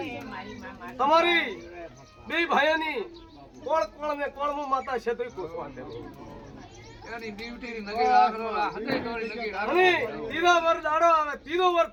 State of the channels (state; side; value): identical; both; correlation 1.00